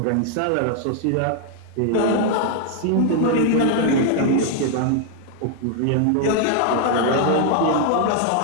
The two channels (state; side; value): different; both; correlation 0.00